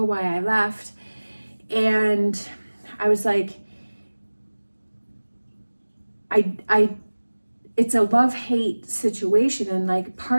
why I left. And I was like, it's a love-hate situation, and like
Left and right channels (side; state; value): both; inverted; correlation -1.00